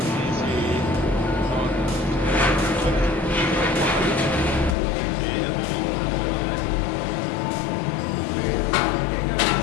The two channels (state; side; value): drops out; right; at 4.8 s